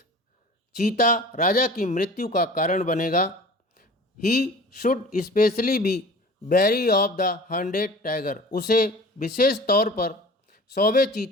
चीता राजा की मृत्यु का कारण बनेगा। He should specially be very of the 100 tiger, उसे विशेष तौर पर 100वें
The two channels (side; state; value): both; normal; correlation 0.42